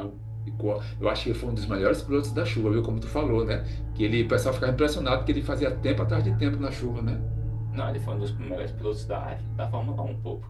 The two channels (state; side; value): identical; both; correlation 1.00